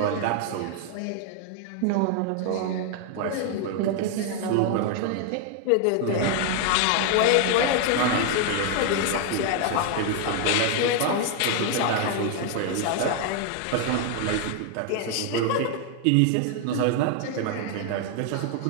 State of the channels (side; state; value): both; different; correlation 0.00